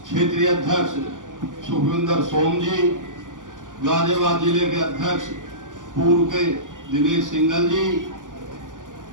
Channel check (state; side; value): late; left; 0.88 ms